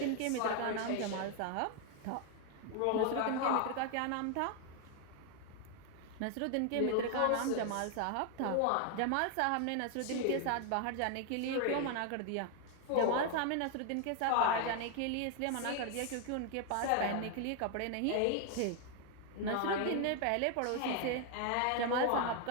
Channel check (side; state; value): both; different; correlation 0.00